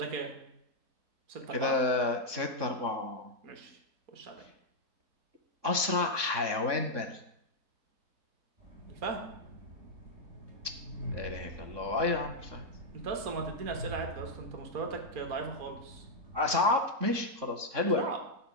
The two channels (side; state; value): left; late; 3.6 ms